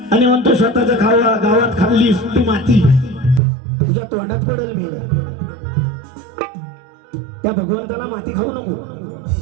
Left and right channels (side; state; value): left; drops out; at 3.4 s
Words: आणि म्हणतो स्वतःच्या गावात खाल्लीस तू माती, तुझ्या तोंडात पडेल मी. त्या भगवंताला माती खाऊ नको.